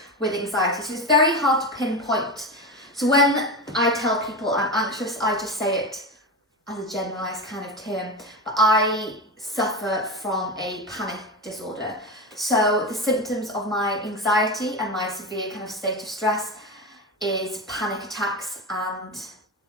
with anxiety. So it's very hard to pinpoint. So when I tell people I'm anxious, I just say it as a generalized kind of term. But I suffer from a panic disorder. So the symptoms of my anxiety and my severe kind of state of stress is panic attacks and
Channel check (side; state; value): both; normal; correlation 0.21